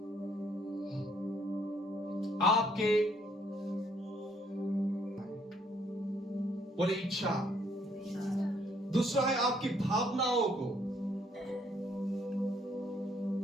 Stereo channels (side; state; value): both; normal; correlation 0.67